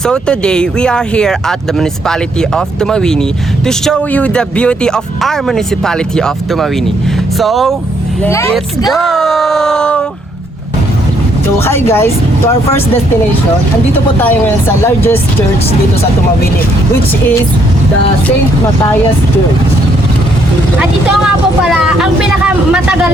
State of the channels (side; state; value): both; normal; correlation 0.71